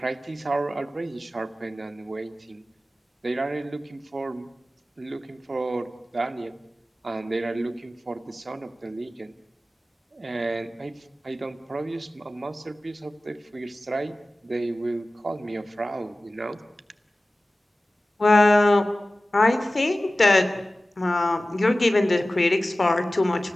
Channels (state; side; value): normal; both; correlation 0.96